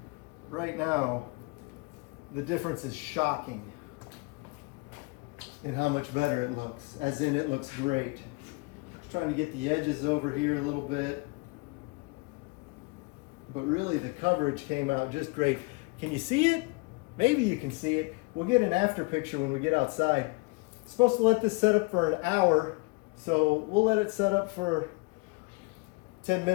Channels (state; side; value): quieter; right; 27.0 dB